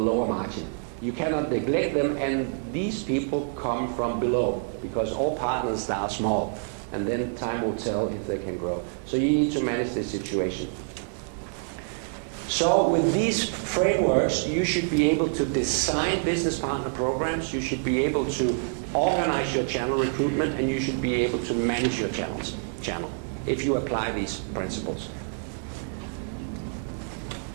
margin. You cannot neglect them, and these people come from below, because all partners start small, and then time will tell if they can grow. So you need to manage this situation. So with these frameworks, you should be able to design business partner programs, you should be able to organize your channel recruitment, and you should be able to manage your channel if you apply these principles.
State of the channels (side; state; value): left; silent; digital silence